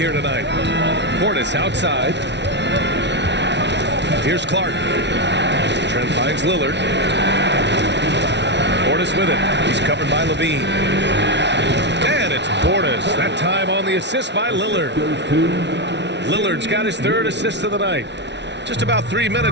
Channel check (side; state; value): left; late; 0.51 ms